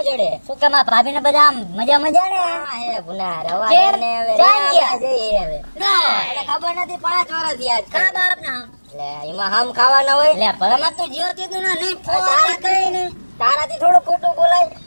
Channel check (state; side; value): inverted; both; correlation -1.00